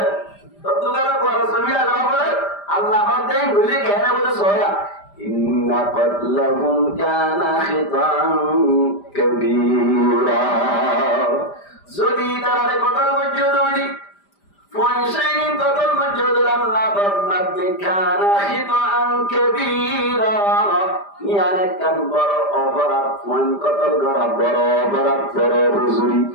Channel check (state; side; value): late; right; 5.0 ms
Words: तो तुम्हारा कोई जमीन अल्लाह बोले अल्लाह बोलते हैं बोले कहने बोले सोया إن قتلهم كان خطأ كبيرا যদি তারা কতল মজুদ হইনি ফয়সাইন কতল মজুদ আল্লাহ ফরমাতে কানা খিতাআন কাবীরা ইয়ানে কান বড় অপরাধ ফয়ন কতল করা বড় অপরাধ বড় হুজুরি